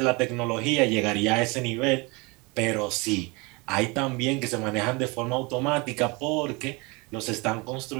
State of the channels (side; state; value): left; quieter; 27.2 dB